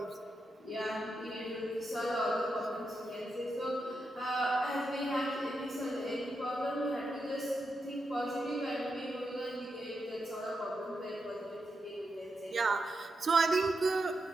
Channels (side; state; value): both; normal; correlation 0.86